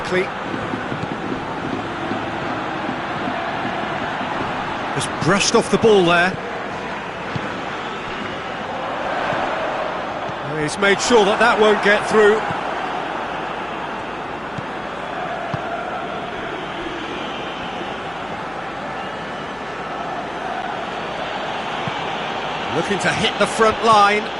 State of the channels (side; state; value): left; noise; hum, 24 dB below the sound